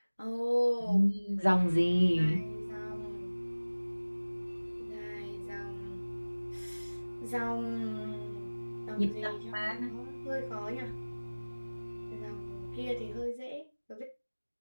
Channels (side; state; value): both; inverted; correlation -1.00